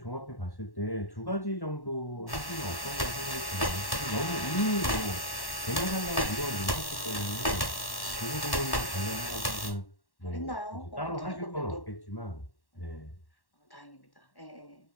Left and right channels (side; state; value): right; late; 1.1 ms